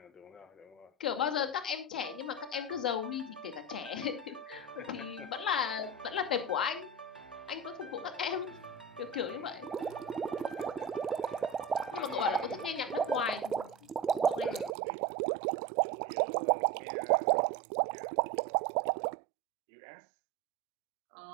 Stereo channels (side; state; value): left; drops out; at 14.8 s